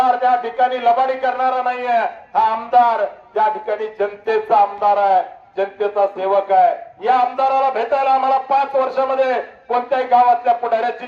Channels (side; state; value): both; identical; correlation 1.00